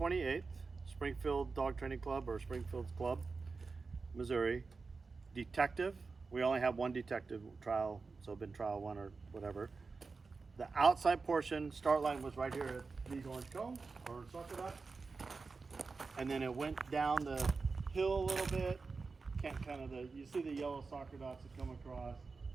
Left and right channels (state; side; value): quieter; left; 4.3 dB